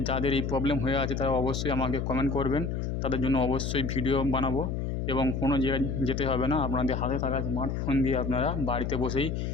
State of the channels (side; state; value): left; noise; hum, 2 dB below the sound